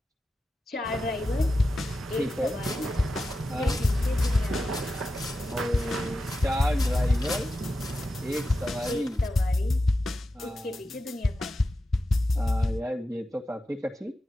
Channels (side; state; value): both; normal; correlation 0.91